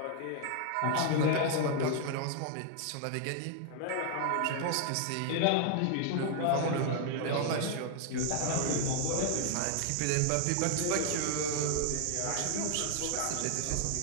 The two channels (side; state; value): both; different; correlation 0.00